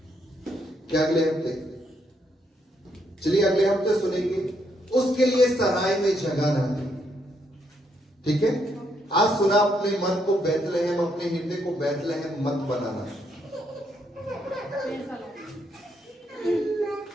क्या अगले हफ्ते? चलिए अगले हफ्ते सुनेंगे। उसके लिए सराय में जगह ना दे। ठीक है, आज सुना अपने मन को बैतलहम, अपने हृदय को बैतलहम मत बनाना।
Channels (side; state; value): both; normal; correlation 0.75